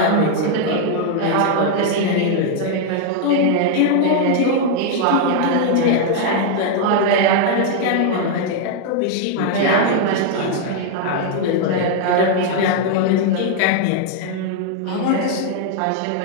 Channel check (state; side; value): different; both; correlation 0.00